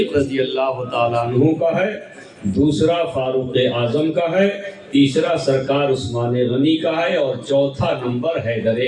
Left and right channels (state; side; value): identical; both; correlation 1.00